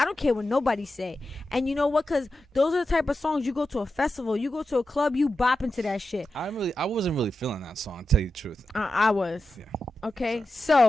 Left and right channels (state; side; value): normal; both; correlation 0.90